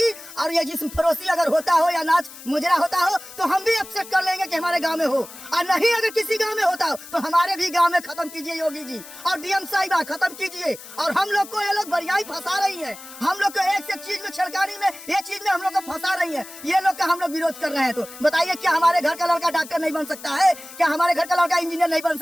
और ये जिस्म फरोशी अगर होता हो या नाच मुजरा होता हो तो हम भी एक्सेप्ट कर लेंगे कि हमारे गांव में हो। और नहीं अगर किसी गांव में होता हो तो हमारे भी गांव में खत्म कीजिए योगी जी और डीएम साहिबा खत्म कीजिए। और हम लोग को ये लोग बढ़िया फंसा रही है, हम लोग को एक से एक चीज में छलकानी में ये चीज में हम लोग को फंसा रही है, ये लोग का हम लोग विरोध कर रहे हैं। तो बताइए क्या हमारे घर का लड़का डॉक्टर नहीं बन सकता है? क्या हमारे घर का लड़का इंजीनियर नहीं बन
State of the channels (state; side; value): noise; left; hiss, 16 dB below the sound